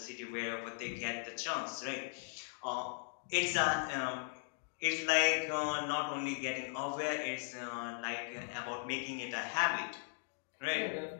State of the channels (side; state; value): right; silent; 52 dB below the other